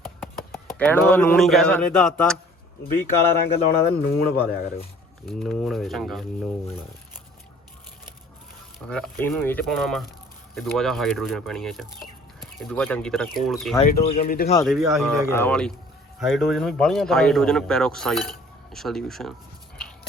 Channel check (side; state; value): both; normal; correlation 0.52